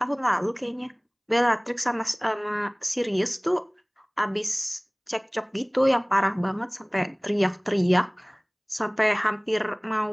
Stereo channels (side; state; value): both; identical; correlation 1.00